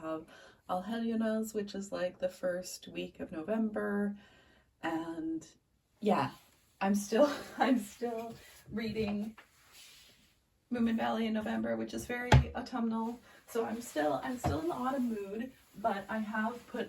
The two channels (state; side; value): identical; both; correlation 1.00